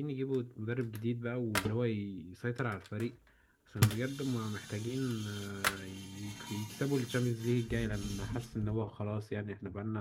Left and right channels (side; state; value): both; identical; correlation 1.00